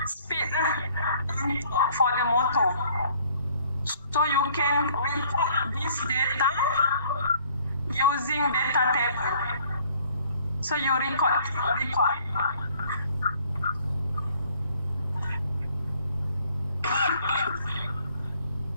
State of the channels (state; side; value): inverted; both; correlation -0.59